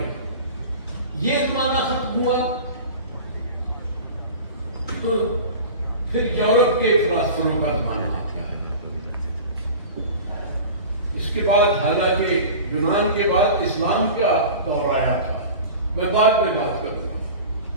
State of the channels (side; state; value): both; inverted; correlation -0.36